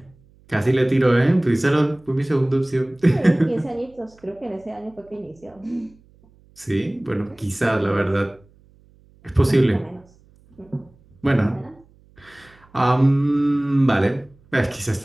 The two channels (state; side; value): noise; right; hum, 30 dB below the sound